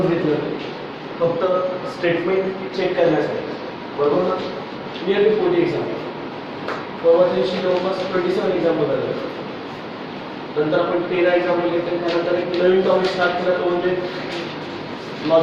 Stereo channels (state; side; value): identical; both; correlation 1.00